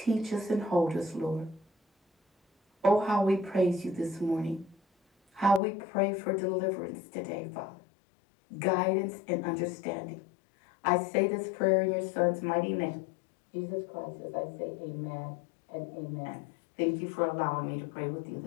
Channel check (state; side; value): drops out; right; at 5.6 s